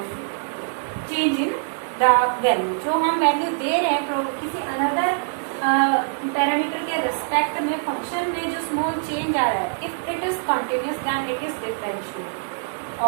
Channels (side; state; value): left; silent; digital silence